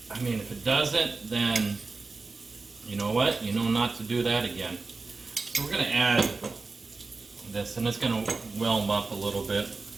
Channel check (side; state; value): left; quieter; 3.9 dB